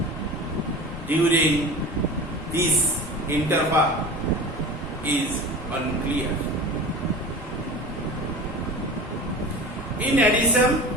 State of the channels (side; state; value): both; normal; correlation 0.35